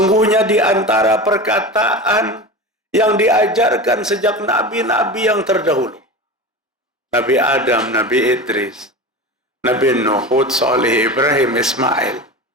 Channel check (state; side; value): normal; both; correlation 0.28